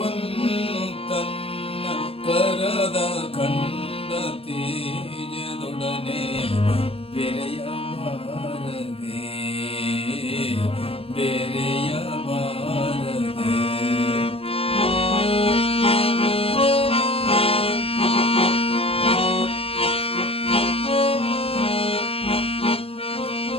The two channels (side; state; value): right; late; 0.28 ms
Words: ತನ್ನ ಕರದ ಕಂಡ ತೇಜದೊಡನೆ ಬೆರೆಯ ಬಾರದೆ ಬೆರೆಯ ಬಾರದೆ